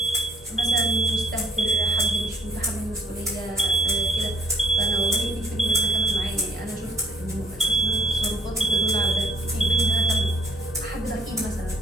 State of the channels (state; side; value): normal; both; correlation 0.63